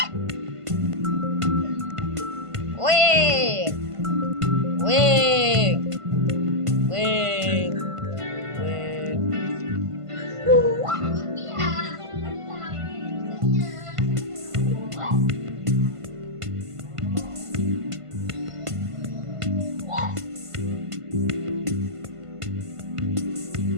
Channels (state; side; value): late; left; 1.5 ms